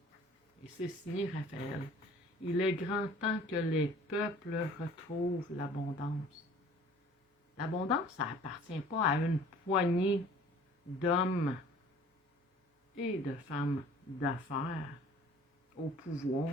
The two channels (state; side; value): normal; both; correlation 0.50